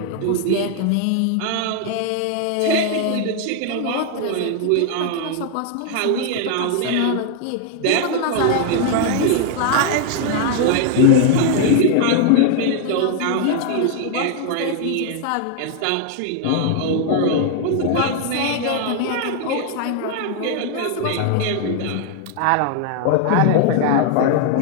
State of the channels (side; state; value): both; different; correlation 0.00